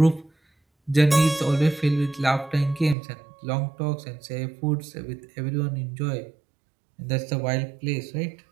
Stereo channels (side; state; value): left; drops out; at 3.0 s